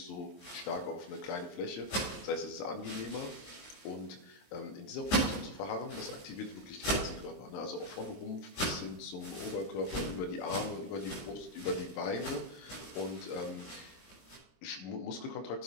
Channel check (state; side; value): late; right; 23 ms